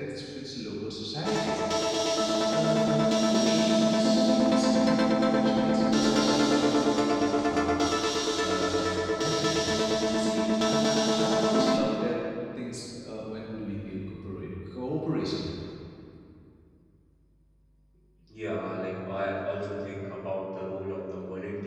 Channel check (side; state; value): both; identical; correlation 1.00